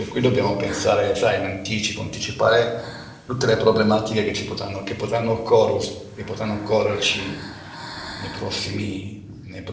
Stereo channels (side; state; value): both; identical; correlation 1.00